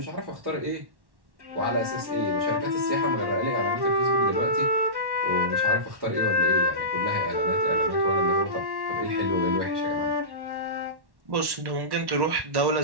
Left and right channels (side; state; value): left; late; 1.1 ms